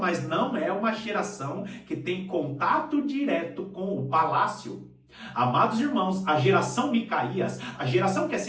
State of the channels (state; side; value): identical; both; correlation 1.00